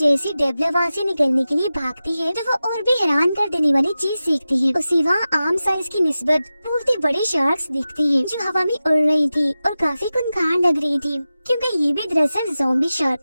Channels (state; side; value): inverted; both; correlation -0.94